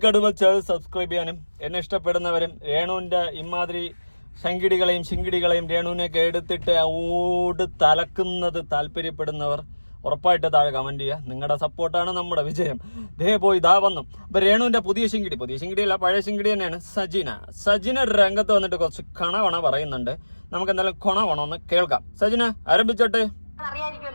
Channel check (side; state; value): both; inverted; correlation -1.00